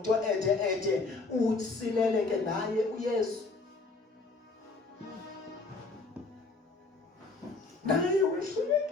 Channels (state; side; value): quieter; right; 3.7 dB